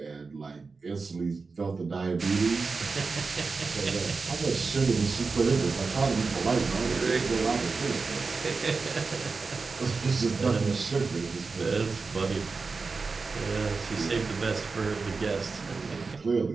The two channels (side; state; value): left; quieter; 4.4 dB